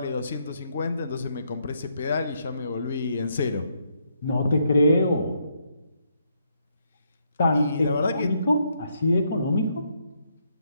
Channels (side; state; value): both; inverted; correlation -0.76